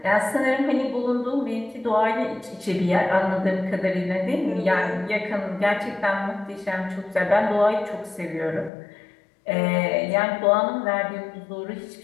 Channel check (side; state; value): right; drops out; at 8.7 s